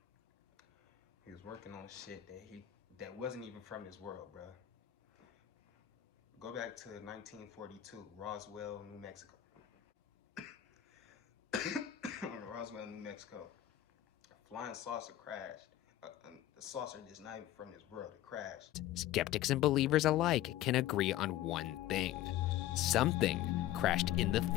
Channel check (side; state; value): right; quieter; 13.4 dB